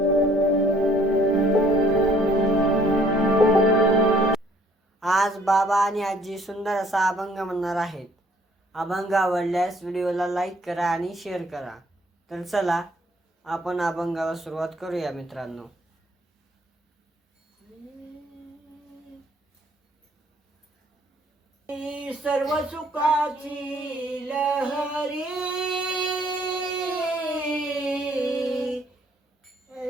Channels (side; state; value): both; normal; correlation 0.60